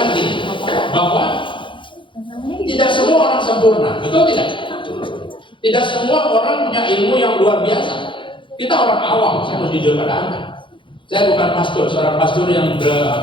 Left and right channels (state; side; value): late; right; 0.24 ms